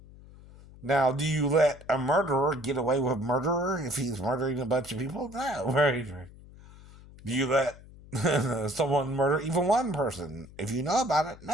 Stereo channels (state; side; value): noise; left; hum, 20 dB below the sound